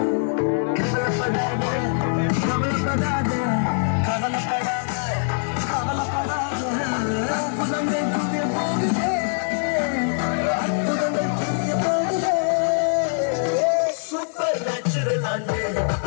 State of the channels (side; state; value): right; silent; 63 dB below the other